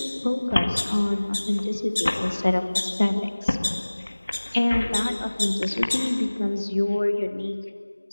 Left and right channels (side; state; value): both; inverted; correlation -1.00